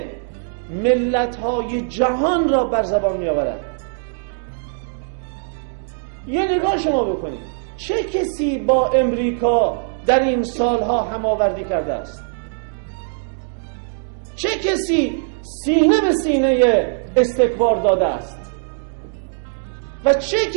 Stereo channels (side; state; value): left; silent; 65 dB below the other